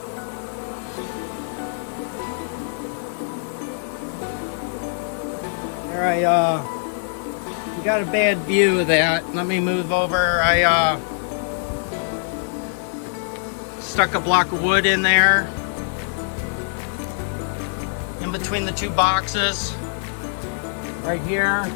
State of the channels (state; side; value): silent; right; digital silence